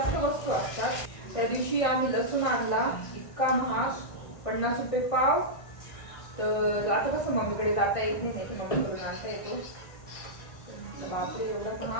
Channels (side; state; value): right; late; 1.6 ms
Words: वस्तू असतात. त्या दिवशी आम्ही लसूण आणला, इतका महाग, 50 रुपये पाव. तर आता कसं मम्मीकडे जाता येत नाही, मम्मीकडून आणता येतो. बापरे एवढा